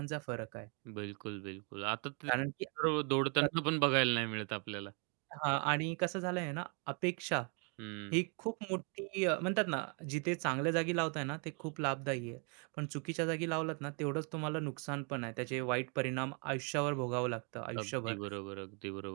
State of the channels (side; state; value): left; quieter; 37.0 dB